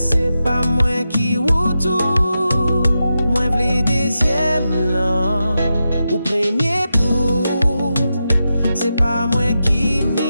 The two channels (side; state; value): both; inverted; correlation -0.89